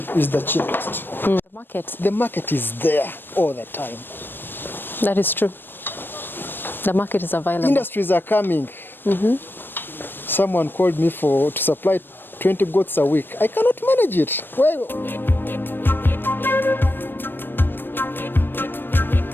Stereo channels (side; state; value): right; late; 0.096 ms